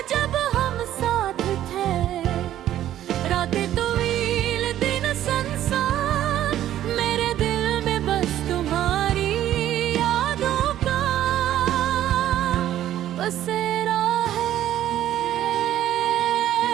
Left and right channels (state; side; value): quieter; left; 12.3 dB